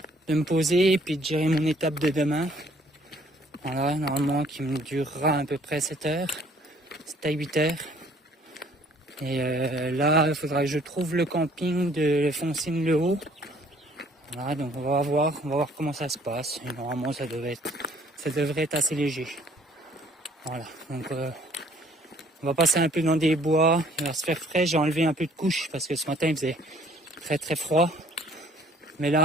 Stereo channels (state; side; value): normal; both; correlation 0.59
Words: me poser et puis de gérer mon étape de demain. Voilà, normalement qui me durera à peu près 7 heures, 7 à 8 heures. Et là, il faudra que je trouve le camping de Foncine-le-Haut. Voilà, donc on va voir comment ça se passe. Et normalement, ça devrait être assez léger. Voilà, donc on va passer un peu dans des bois, il va se faire frais. J'ai enlevé un peu de couche parce que ce matin il faisait très très froid. Mais